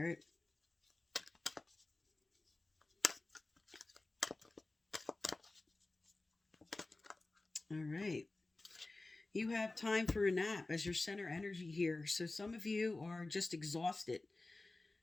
All right. You have time for a nap as your center energy here. So some of you are just exhausted.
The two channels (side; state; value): right; quieter; 3.1 dB